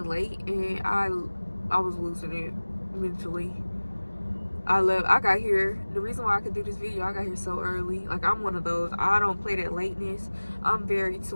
late and I was losing it mentally. I got here, the reason why I could do this video, I got here so early. Like, I'm one of those, I don't play that lateness. I'm very to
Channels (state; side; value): inverted; both; correlation -1.00